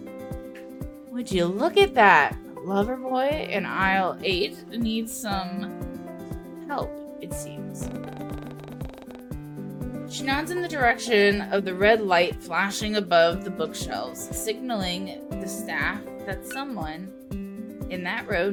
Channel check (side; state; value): both; identical; correlation 1.00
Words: Would you look at that? Lover boy in aisle 8 needs some help, it seems. She nods in the direction of the red light flashing above the bookshelves, signaling the staff that someone in that row